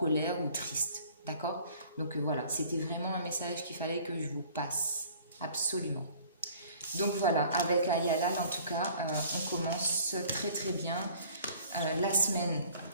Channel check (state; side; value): inverted; both; correlation -0.51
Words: ou triste. D'accord? Donc voilà, c'était vraiment un message qu'il fallait que je vous passe. Absolument. Donc voilà, avec Ayala, en tout cas, on commence très très bien